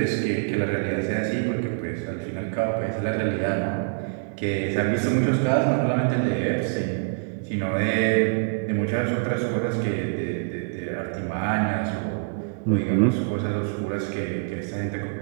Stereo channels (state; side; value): silent; left; 62 dB below the other